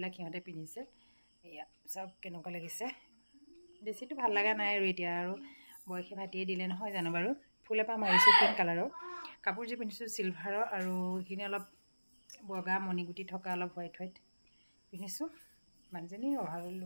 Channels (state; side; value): inverted; both; correlation -1.00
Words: সিহঁতে পিন্ধিছে এয়া চব কেনেকুৱা লাগিছে বেছিটো ভাল লগা নাই আৰু এতিয়া আৰু বয়সে ভাতিয়ে দিলে নহয় জানো বাৰু ফুল এপাহ মাৰিছোঁ পিংক কালাৰৰ কাপোৰযোৰ পিন্ধিছোঁ চিলভাৰৰ আৰু এইখিনি অলপ বগা মণিগুটি থকা অলপ হোৱাইট পিন্ধিছোঁ মানুহজনী অভাৰৰ